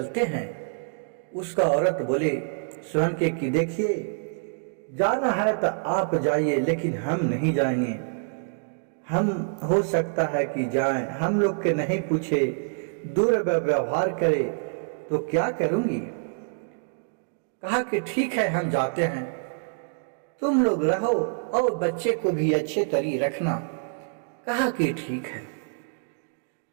हैं। उसका औरत बोले सोहन के कि देखिए, जाना है तो आप जाइए, लेकिन हम नहीं जाएंगे। हम हो सकता है कि जाएं, हम लोग के नहीं पूछे, दुर्व्यवहार करे तो क्या करूंगी। कहा कि ठीक है, हम जाते हैं, तुम लोग रहो और बच्चे को भी अच्छे तरी रखना। कहा कि ठीक है।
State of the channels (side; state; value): left; silent; digital silence